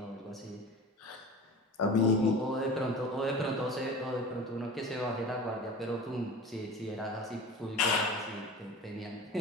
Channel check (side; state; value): both; normal; correlation 0.36